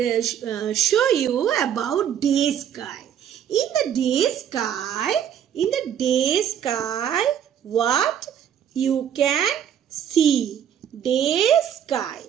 show you about day sky. In the day sky, what you can see? Day sky.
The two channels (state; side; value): quieter; left; 9.3 dB